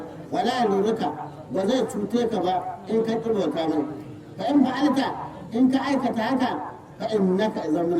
wala yalurruka ba zai cuce ka ba in ka bauta mai fa in fa'alta in ka aikata haka fa innaka idan min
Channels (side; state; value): both; identical; correlation 1.00